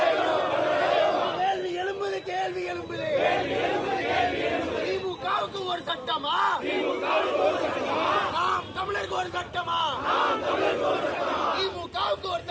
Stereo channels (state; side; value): identical; both; correlation 1.00